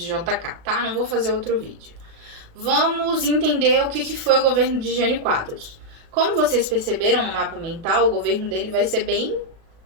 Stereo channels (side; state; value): left; late; 36 ms